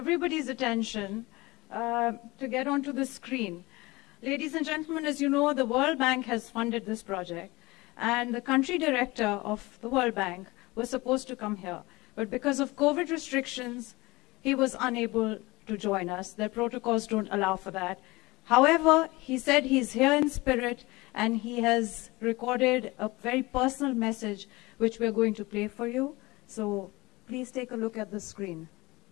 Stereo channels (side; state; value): right; quieter; 22.2 dB